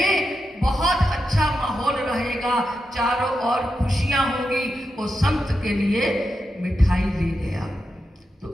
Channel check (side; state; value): both; normal; correlation 0.87